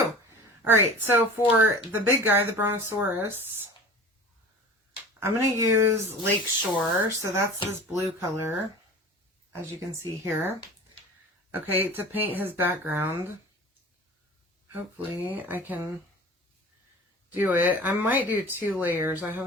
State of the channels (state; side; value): normal; both; correlation 0.38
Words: All right, so for the big guy, the Brontosaurus, I'm going to use Lakeshore. So that's this blue color, as you can see here. Okay, to paint his background. Hopefully I can do it. I might do 2 layers. I